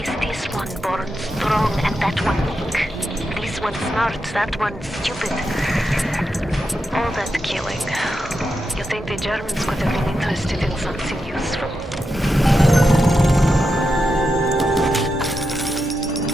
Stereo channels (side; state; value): both; normal; correlation 0.87